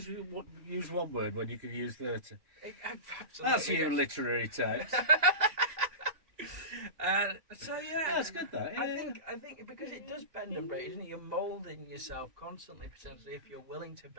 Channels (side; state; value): left; late; 2.8 ms